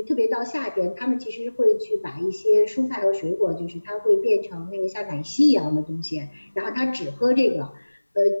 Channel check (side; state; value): both; inverted; correlation -1.00